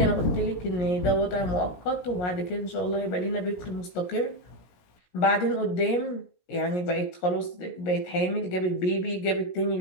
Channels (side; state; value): right; late; 17 ms